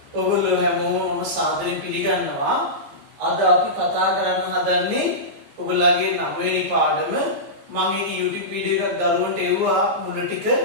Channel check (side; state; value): left; late; 15 ms